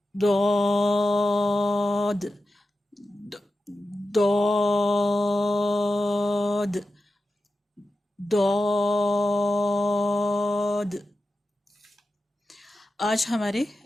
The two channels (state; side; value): normal; both; correlation 0.92